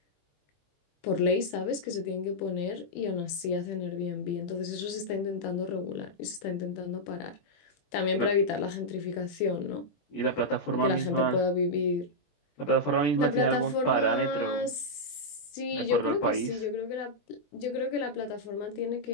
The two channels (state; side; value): late; right; 20 ms